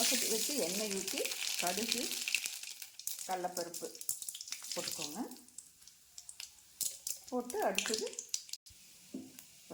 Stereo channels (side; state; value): both; identical; correlation 1.00